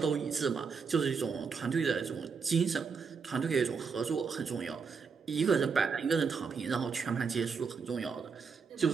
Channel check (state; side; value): quieter; left; 5.5 dB